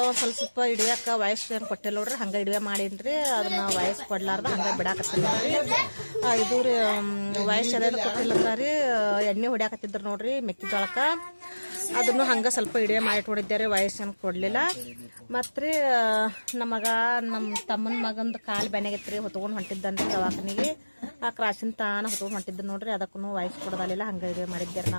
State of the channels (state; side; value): inverted; both; correlation -1.00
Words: ಒಂದು ಸ್ವಲ್ಪ ಹಿಡಿಯೋಕೆ ವಾಯ್ಸ್ ಏನು ಕೊಟ್ಟಿಲ್ಲ ನೋಡ್ರಿ, ಹಂಗೆ ಹಿಡಿವೆ ಮಾಡೀನಿ. ಅದನ್ನ ವಾಯ್ಸ್ ಕೊಡ್ಲಾರ್ದ ಹಂಗೆ ಬಿಡಾಕತ್ತೀನಿ ನೋಡ್ರಿ. ಇದು ರೀ ವಾಯ್ಸ್ ಅದೆಲ್ಲ ಕೊಟ್ಟಿಲ್ಲ ರೀ, ಎಣ್ಣೆ ಹೊಡ್ಯಾಕತ್ತಿದ್ರು ನೋಡ್ರಿ ಮೆಕ್ಕೆಜೋಳಕ್ಕೆ. ಅದನ್ನು ಹಂಗೆ ಸ್ವಲ್ಪ ಹಿಡಿವೆ ಮಾಡಿ ಇಟ್ಕೊಂಡಿದ್ದೆ, ವಾಯ್ಸ್ ಏನು ಕೊಡಲಿಲ್ಲ. ಮತ್ತು ರೀ ನಮ್ಮ ತಮ್ಮನ ಮಗಂದು ಕಾಲು ಬೆನೆಗೈತೆ ರೀ, ಹೊತ್ಕೊಂಡು ಹೊಂಟಿದ್ದಾನೆ ದವಾಖಾನಿಗೆ. ಆ ಕ್ರಾಸಿನ ತಾನ ಹೊತ್ಕೊಂಡು ಹೊಂಟಿದ್ದೆ ನೋಡ್ರಿ, ಅದಕ್ಕೂ ವಾಯ್ಸ್ ಕೊಡೋದಲ್ಲ, ಹಂಗೆ ಹಿಡಿವೆ ಮಾಡಿದ್ದೆ